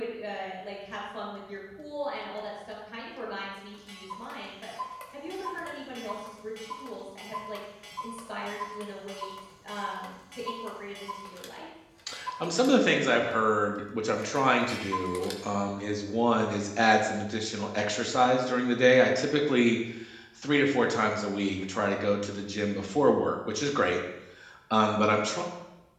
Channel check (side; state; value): both; identical; correlation 1.00